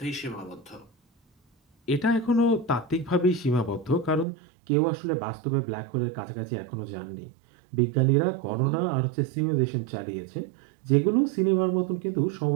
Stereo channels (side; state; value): left; drops out; at 4.2 s